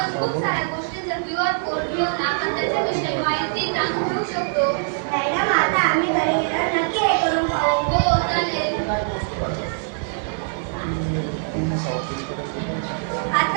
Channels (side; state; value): left; silent; 57 dB below the other